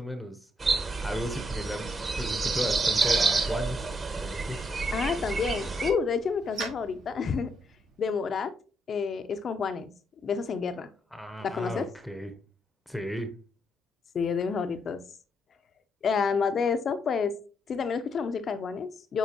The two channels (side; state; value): both; normal; correlation 0.77